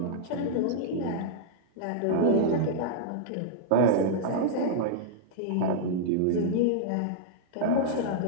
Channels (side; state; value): both; different; correlation -0.02